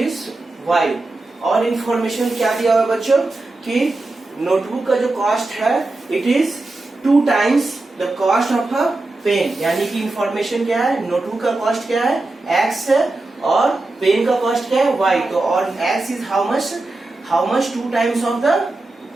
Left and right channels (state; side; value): quieter; left; 3.0 dB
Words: y. और information क्या दिया हुआ बच्चों कि नोटबुक का जो कॉस्ट है it is 2 times the cost of a pen, यानी कि इंफॉर्मेशन क्या है, नोटबुक का कॉस्ट क्या है एक्स है और पेन का कॉस्ट क्या है वाई। तो और x is how much 2 times